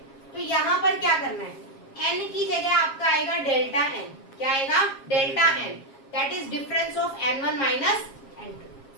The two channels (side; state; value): right; late; 7.4 ms